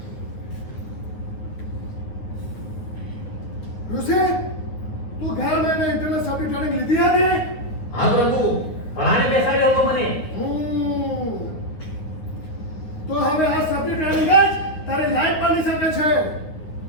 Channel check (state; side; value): late; right; 9.3 ms